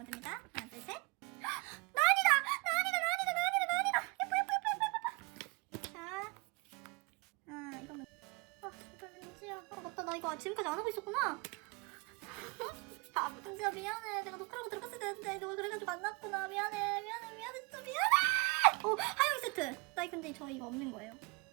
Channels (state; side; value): quieter; left; 28.1 dB